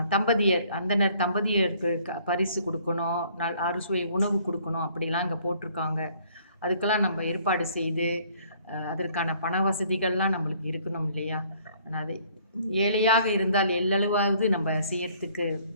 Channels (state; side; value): inverted; both; correlation -0.60